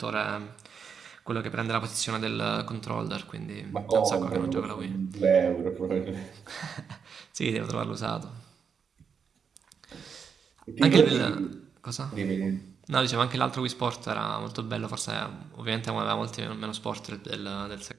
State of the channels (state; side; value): quieter; left; 6.5 dB